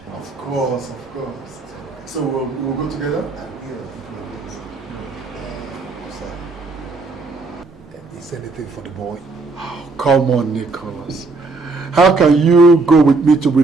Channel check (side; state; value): left; quieter; 3.6 dB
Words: Of course, of course. So we'll go together? Is anything for the boy? Oh, come on, Nicolas. How can you go with me to